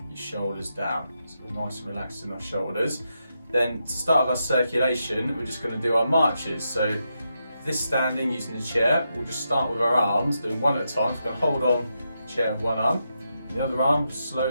your shoulders down. So we're nice and relaxed in our shoulders. Then to start our circulation, we're just going to do our marches. So this standing using the chair, we'll just start with our arms, doing one at a time. So we're going to hold on the chair with one arm. The other arm,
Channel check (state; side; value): inverted; both; correlation -0.84